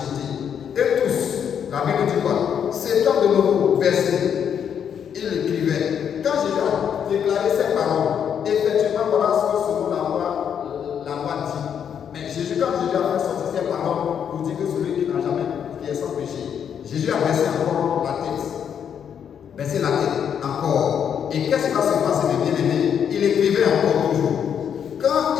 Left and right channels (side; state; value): right; quieter; 8.2 dB